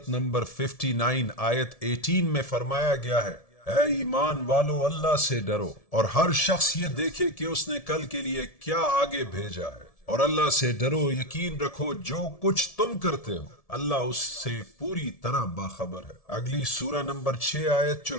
نمبر 59 آیت 18 میں فرمایا گیا ہے، اے ایمان والو اللہ سے ڈرو اور ہر شخص یہ دیکھے کہ اس نے کل کے لیے کیا آگے بھیجا ہے، اور اللہ سے ڈرو، یقین رکھو جو کچھ تم کرتے ہو اللہ اس سے پوری طرح باخبر ہے۔ اگلی سورہ نمبر 6 آیت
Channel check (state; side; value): late; right; 1.7 ms